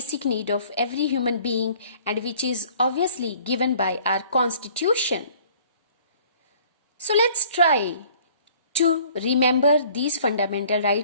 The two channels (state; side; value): inverted; both; correlation -0.54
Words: need of every human being and which is obviously given by our constitution. So let's try to remember these fundamental